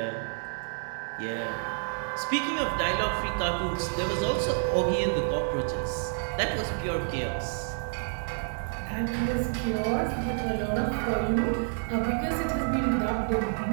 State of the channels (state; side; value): silent; left; digital silence